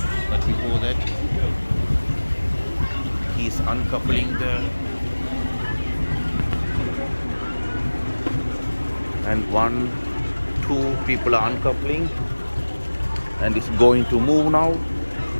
But before that, he's uncoupling and 1, 2 people are uncoupling, and it's going to move now.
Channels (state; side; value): inverted; both; correlation -1.00